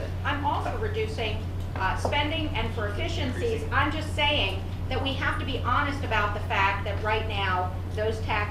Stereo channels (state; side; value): identical; both; correlation 1.00